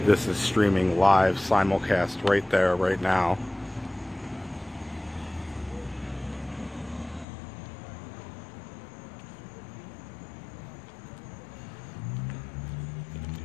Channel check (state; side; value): drops out; right; at 7.2 s